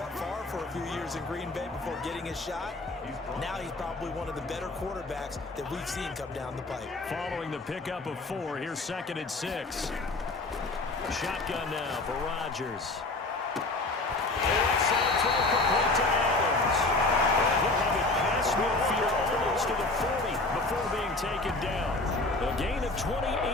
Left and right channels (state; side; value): quieter; right; 3.1 dB